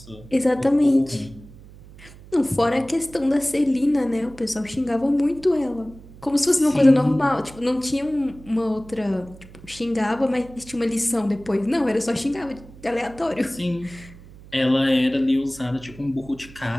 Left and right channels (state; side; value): noise; right; hum, 20 dB below the sound